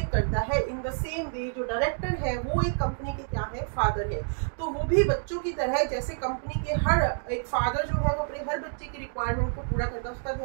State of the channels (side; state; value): left; silent; digital silence